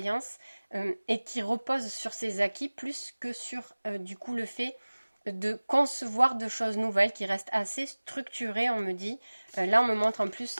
et qui repose sur ses acquis plus que sur du coup le fait de concevoir de choses nouvelles qui restent assez structurées, on me dit. Là, on me montre en plus,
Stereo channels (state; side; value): inverted; both; correlation -1.00